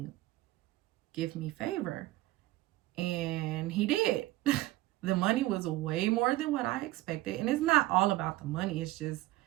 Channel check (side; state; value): left; quieter; 17.4 dB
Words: give me favor. And he did. The money was way more than what I expected. And it's not all about the money. It's just